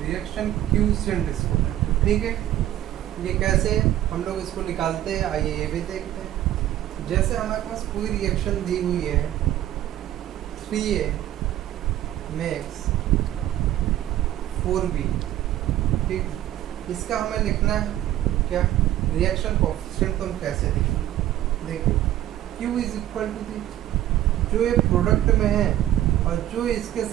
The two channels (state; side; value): quieter; left; 13.0 dB